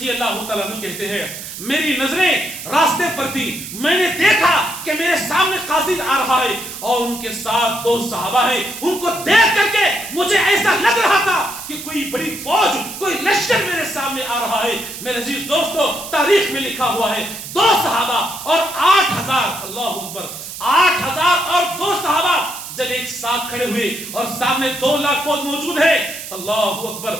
اللہ تعالیٰ عنہ کہتے ہیں میری نظریں راستے پر تھی، میں نے دیکھا کہ میرے سامنے قاصد آ رہا ہے اور ان کے ساتھ دو صحابہ ہیں، ان کو دیکھ کر کے مجھے ایسا لگ رہا تھا کہ کوئی بڑی فوج، کوئی لشکر میرے سامنے آ رہا ہے۔ میرے عزیز دوستو، تاریخ میں لکھا ہوا ہے 2 صحابہ اور 8000، اللہ اکبر، 8000 اور 2 صحابہ جب ایک ساتھ کھڑے ہوئے اور سامنے 2 لاکھ فوج موجود ہے، اللہ اکبر،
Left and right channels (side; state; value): right; noise; hiss, 10 dB below the sound